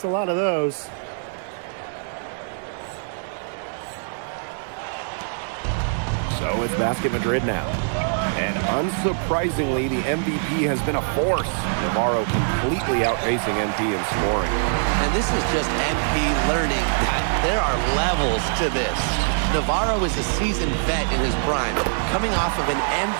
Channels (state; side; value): silent; left; digital silence